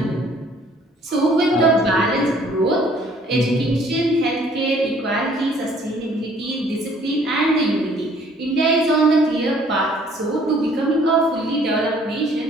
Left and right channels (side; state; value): both; normal; correlation 0.59